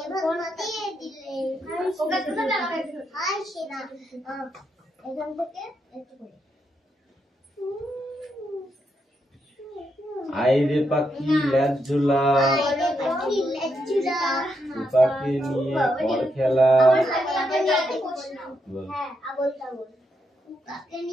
আইরে পাখি লেজ ঝুলা পাখি নিয়ে পর খেলা তাকে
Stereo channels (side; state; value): both; normal; correlation 0.81